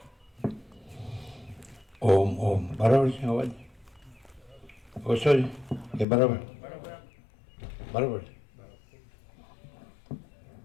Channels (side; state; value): right; drops out; at 6.1 s